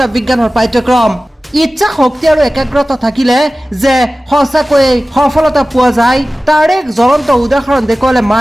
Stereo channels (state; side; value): normal; both; correlation 0.96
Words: বিজ্ঞানৰ পাঠ্যক্ৰম ইচ্ছা শক্তি আৰু একাগ্ৰতা থাকিলে যে সঁচাকৈয়ে সফলতা পোৱা যায় তাৰ এক জ্বলন্ত উদাহৰণ দেখুৱালে